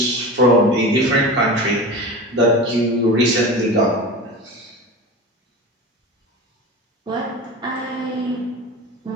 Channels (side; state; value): both; normal; correlation 0.31